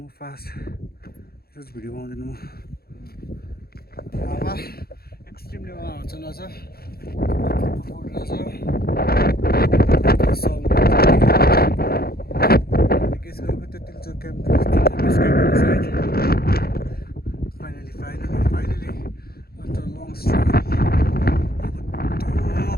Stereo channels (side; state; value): right; late; 0.45 ms